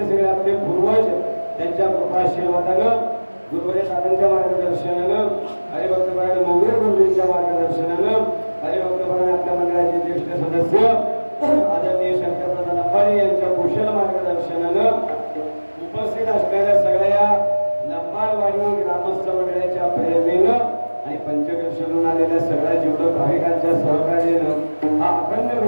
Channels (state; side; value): inverted; both; correlation -1.00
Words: सगळे आपले पूर्वज त्यांच्या कृपा आशीर्वादानं गुरुवारी दादांच्या मार्गदर्शनानं हरिभक्तपरायण मोगरे गुरुजींच्या मार्गदर्शनानं हरिभक्तपरायण आपल्या मंडळाचे ज्येष्ठ सदस्य आदरणीय शंकरदादा लंबाडे यांच्या कुशल मार्गदर्शनानं उपस्थित असणाऱ्या सगळ्या लंबाडवाडी ग्रामस्थ मंडळाच्या प्रेरणेनं आणि पंचकर्षणून आलेल्या सगळ्या जीवलग भाविकांच्या सहकार्यानं हा अखंड